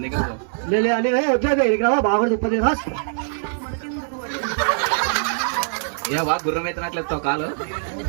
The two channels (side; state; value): left; silent; digital silence